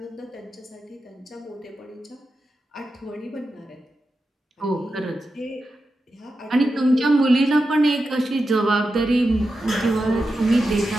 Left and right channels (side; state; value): both; normal; correlation 0.90